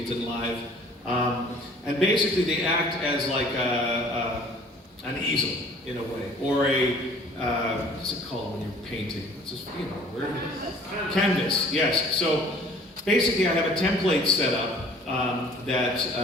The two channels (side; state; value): both; normal; correlation 0.52